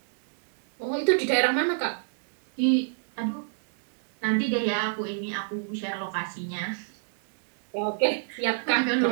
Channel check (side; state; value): left; silent; digital silence